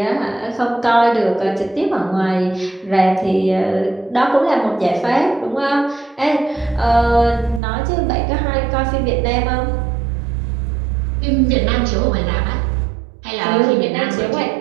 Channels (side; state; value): left; drops out; at 7.6 s